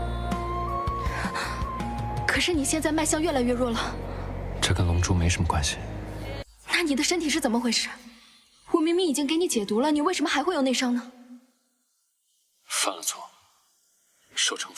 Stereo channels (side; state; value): both; identical; correlation 1.00